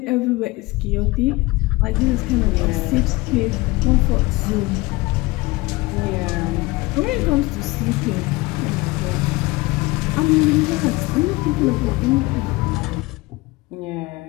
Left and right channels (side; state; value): right; quieter; 22.0 dB